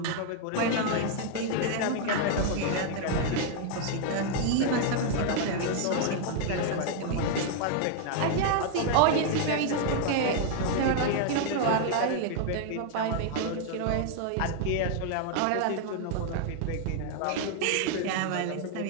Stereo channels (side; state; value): both; different; correlation 0.00